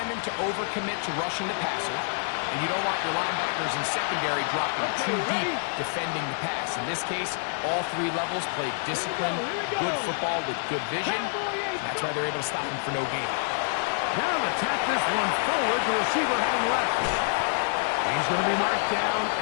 to overcommit to rushing the passer, and you don't want your linebackers and secondary dropping too deep defending the pass. In this case, all three levels played disciplined, good football with good vision. That's why they're able to stop him for no gain. Now to tap this one forward, the receiver heading left. He's going to be marked down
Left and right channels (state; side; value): silent; right; digital silence